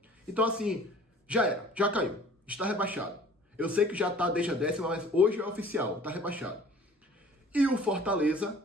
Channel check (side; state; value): both; normal; correlation 0.49